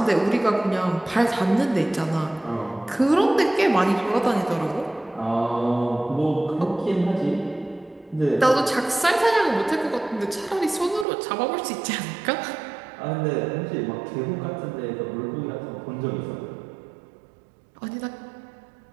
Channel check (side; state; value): left; drops out; at 11.1 s